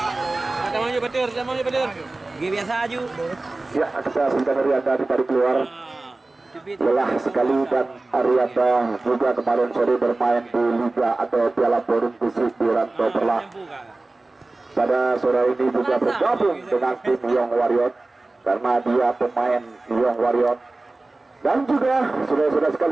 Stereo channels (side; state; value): left; quieter; 3.1 dB